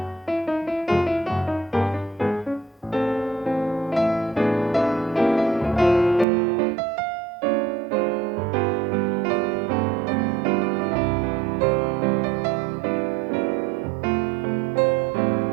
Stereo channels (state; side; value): drops out; left; at 6.2 s